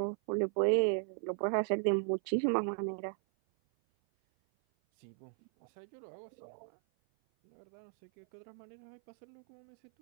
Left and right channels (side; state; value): left; silent; 53 dB below the other